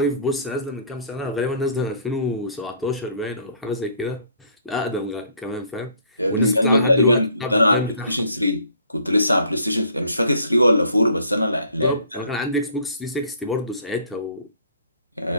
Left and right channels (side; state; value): both; inverted; correlation -0.58